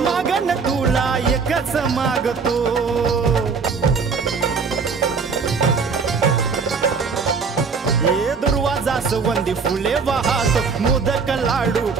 तुला एकच मागतो। हे दुर्वा जास्वंदी फुले वाहतो, मोदक लाडू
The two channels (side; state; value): left; quieter; 5.2 dB